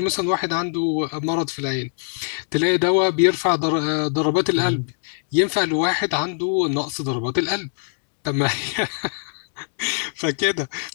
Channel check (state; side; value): silent; right; digital silence